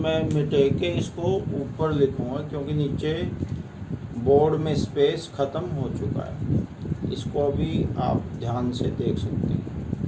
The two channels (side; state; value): both; identical; correlation 1.00